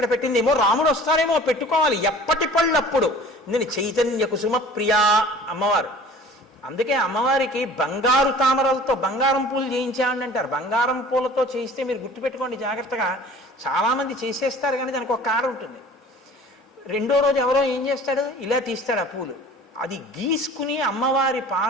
పెట్టింది. ఏమో రాముడు వస్తారేమో, పెట్టుకోవాలి, ఎప్పటి పళ్ళప్పుడు. నేను చైతన్య కుసుమ ప్రియా అమ్మవారు. అందుకే అమ్మవారికి బంగారు తామరలతో బంగారం పూలు చేయించామని అంటారు. బంగారం పూలతో చేయిస్తే మీరు గుర్తుపెట్టుకోండి జాగ్రత్తగా, చాలామంది చేసేస్తారు కానీ దానికి ఒక కాడ ఉంటుంది. రెండో రోజు ఎవరో ఏం చేస్తాడు, ఇలా తీస్తాడు ఆ పూలు, అది గీసుకుని అమ్మవారి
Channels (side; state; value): both; normal; correlation 0.46